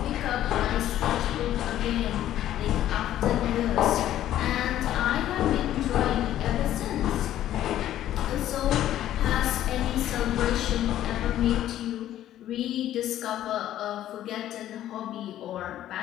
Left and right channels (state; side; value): quieter; right; 12.5 dB